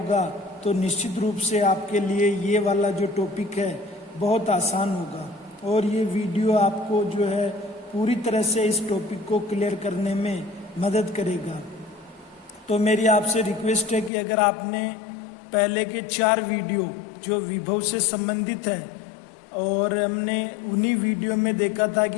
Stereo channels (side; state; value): right; drops out; at 14.1 s